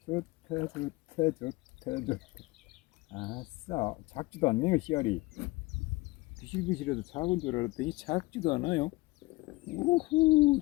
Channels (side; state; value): right; quieter; 21.7 dB